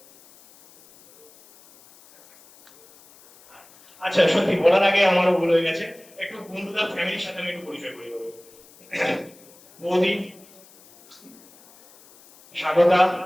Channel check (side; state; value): left; noise; hiss, 26 dB below the sound